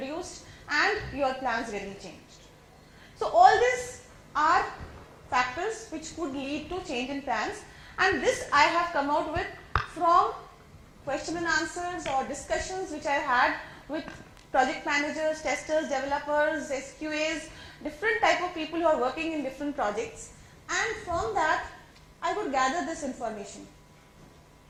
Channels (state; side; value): identical; both; correlation 1.00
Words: and your plans getting changed. So all these are factors which could lead to change in plans, and this I have come out with from question and answers or discussions which I had with project managers, testers, developers, SQAs, different type of people who are working in different projects, and from that I could gather this information.